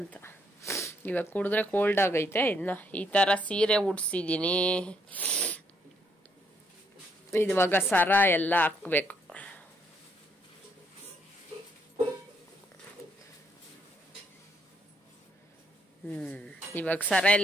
ಇವಾಗ ಕುಡಿದ್ರೆ ಕೋಲ್ಡ್ ಆಗೈತೆ. ಇನ್ನ ಈ ತರ ಸೀರೆ ಉಡ್ಸಿದೀನಿ. ಇವಾಗ ಸರ ಎಲ್ಲ ಹಾಕ್ಬೇಕು. ಇವಾಗ ಸರ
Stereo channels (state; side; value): normal; both; correlation 0.72